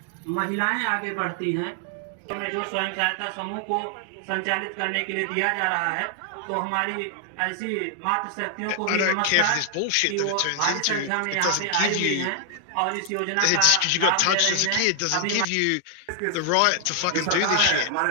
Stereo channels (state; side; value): different; both; correlation 0.00